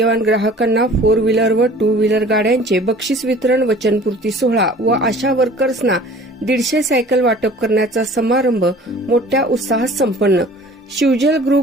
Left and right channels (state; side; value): normal; both; correlation 0.47